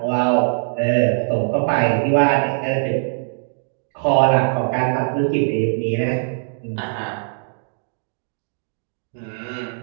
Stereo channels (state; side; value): silent; left; digital silence